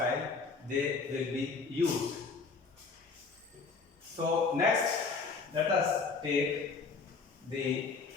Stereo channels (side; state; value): right; quieter; 4.6 dB